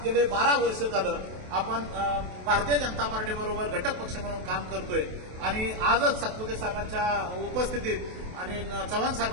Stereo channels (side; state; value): left; late; 28 ms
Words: गेले 12 वर्ष झालं आपण भारतीय जनता पार्टी बरोबर घटक पक्ष म्हणून काम करतोय आणि आजच सातपुते साहेबांच्या उपस्थितीत आणि चव्हाण